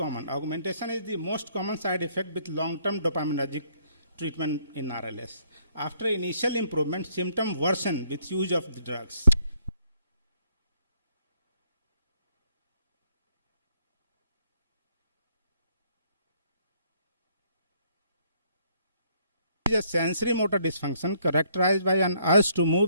Augmentation is the most common side effect with long-term dopaminergic treatment in RLS. After initial improvement, symptom worsen with use of the drugs. It is a sensory motor dysfunction characterized by an urge to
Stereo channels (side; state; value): both; inverted; correlation -0.68